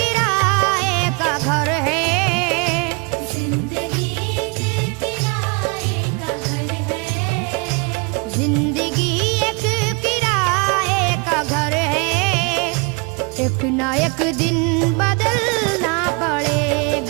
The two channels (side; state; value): left; quieter; 31.9 dB